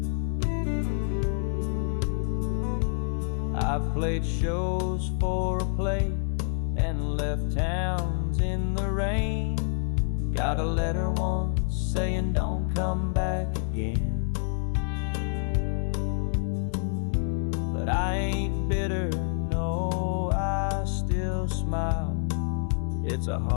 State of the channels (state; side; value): silent; right; 57 dB below the other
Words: I've played shows for a plate and left towns in the rain. Got a letter once saying don't come back again. But I ain't bitter, no, I still smile. It's a